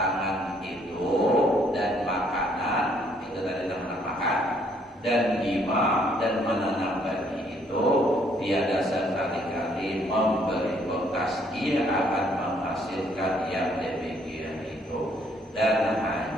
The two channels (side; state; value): both; normal; correlation 0.66